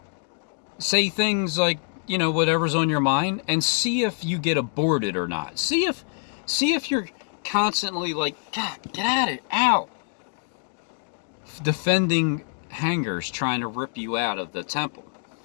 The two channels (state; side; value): silent; right; digital silence